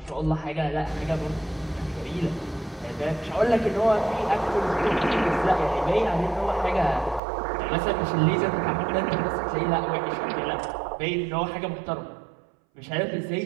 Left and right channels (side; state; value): left; drops out; at 7.2 s